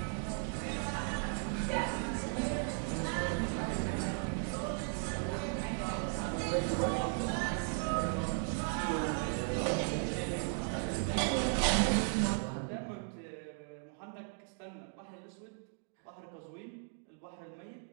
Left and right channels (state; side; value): silent; left; 53 dB below the other